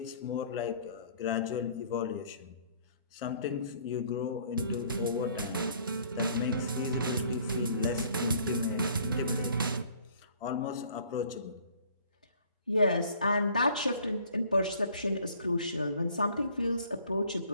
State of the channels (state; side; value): inverted; both; correlation -0.57